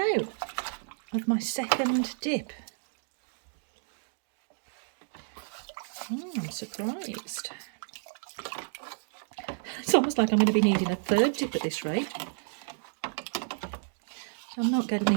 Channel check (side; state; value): left; silent; digital silence